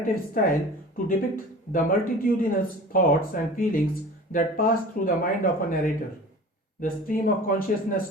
style to depict the multitudinous thoughts and feelings that pass through the mind of a narrator. The stream of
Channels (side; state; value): both; normal; correlation 0.40